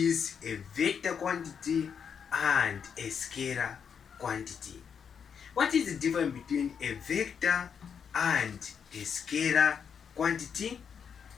a vector quantity and a scalar quantity. What is the difference between a vector and a scalar quantity?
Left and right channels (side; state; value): right; quieter; 7.1 dB